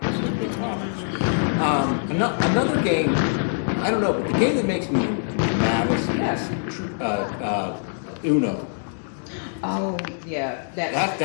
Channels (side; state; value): right; silent; digital silence